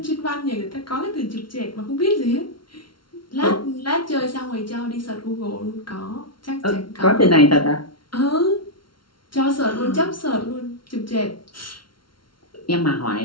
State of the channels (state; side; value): late; right; 0.73 ms